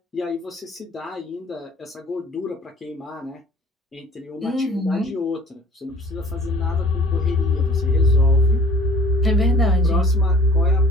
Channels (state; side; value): normal; both; correlation 0.50